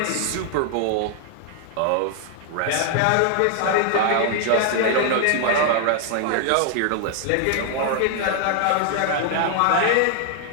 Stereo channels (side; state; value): both; different; correlation 0.00